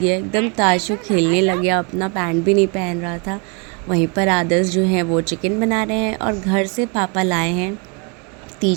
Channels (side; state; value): left; quieter; 32.6 dB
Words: एकदम। ताशु खेलने लग गया, अपना पैंट भी नहीं पहन रहा था। वहीं पर आदर्श जो हैं वो चिकन बना रहे हैं और घर से पापा लाए हैं